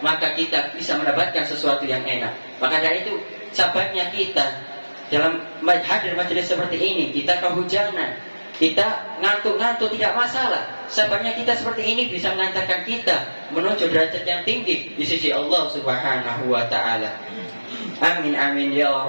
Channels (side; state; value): both; inverted; correlation -1.00